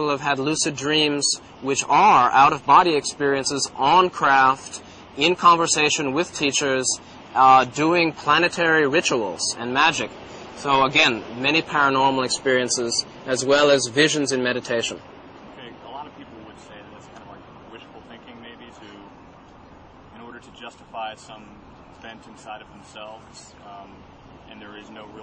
have had lucid dreams, which are out-of-body experiences on craft, in conversation with teachers, doing planetary rituals and magic. So again, many paranormal experiences, as well as visions in meditation. Okay, a lot of people would say that that's kind of like wishful thinking, maybe, in order to justify some event inside of themselves, and there is no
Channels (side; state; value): both; identical; correlation 1.00